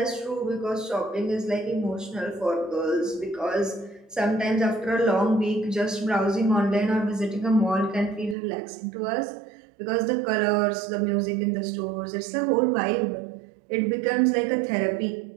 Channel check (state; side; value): drops out; left; at 8.3 s